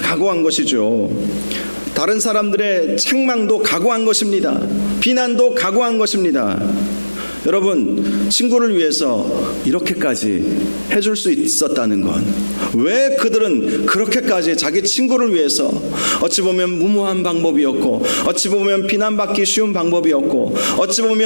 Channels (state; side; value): inverted; both; correlation -1.00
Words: 것이죠. 다른 사람들의 책망도 각오한 것입니다. 비난도 각오한 것입니다. 여러분, 친구를 위해서 이렇게까지 해줄 수 있었다는 건, 왜 그들은 그렇게까지 자기 친구를 위해서 어찌 보면 무모한 방법이었고, 어찌 보면 비난받기 쉬운 방법이었고, 어찌